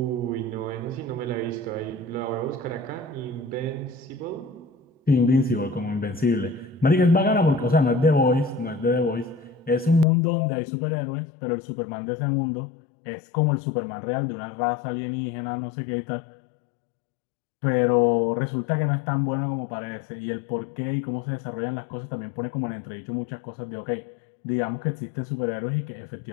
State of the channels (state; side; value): drops out; right; at 10.1 s